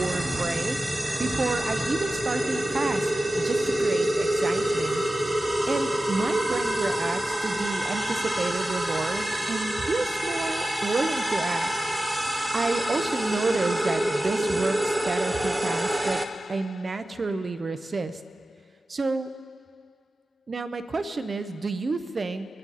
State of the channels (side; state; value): both; normal; correlation 0.94